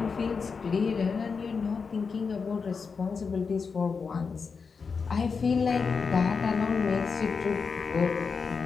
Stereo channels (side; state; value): right; quieter; 5.3 dB